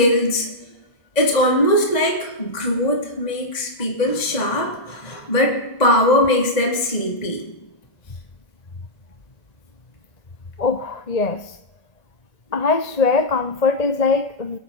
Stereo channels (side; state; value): right; late; 1.9 ms